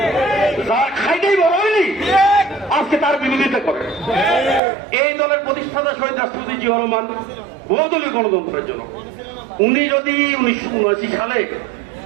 যার খাইতেই বড় হয়নি আজকে তার বিরোধিতা করে। এই দলের প্রতিষ্ঠাতা শহীদ রাষ্ট্রপতি জিয়াউর রহমান বহুদলীয় গণতন্ত্রের জন্য, উনি যদি 1979 সালে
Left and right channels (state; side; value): drops out; left; at 4.6 s